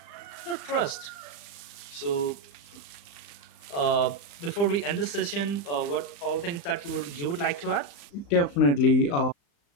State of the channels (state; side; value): late; right; 35 ms